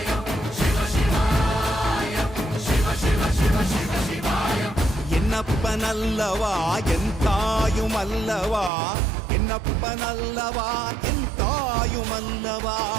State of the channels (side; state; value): left; drops out; at 8.7 s